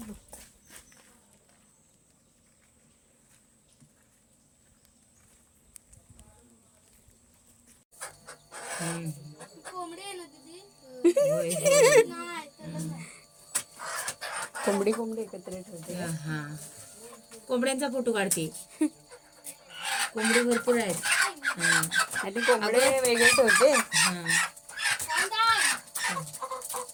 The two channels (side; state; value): both; identical; correlation 1.00